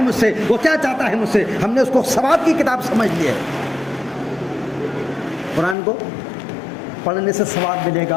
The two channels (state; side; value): drops out; right; at 5.8 s